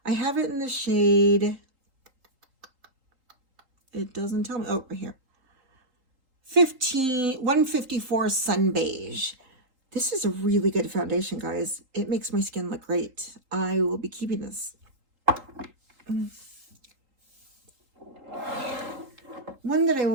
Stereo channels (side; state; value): left; late; 3.8 ms